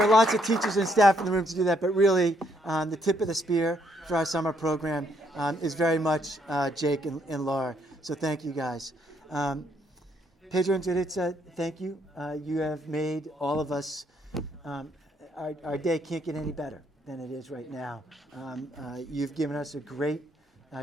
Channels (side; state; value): both; normal; correlation 0.71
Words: are lots of teachers and staff in the room to do that, but really the tip of the spear for our summer program is very much Jake and Laura. So thank you guys. Pedro and Juditza, thank you. You have made all of us, our day can't get any better than it is right now. You've given us a great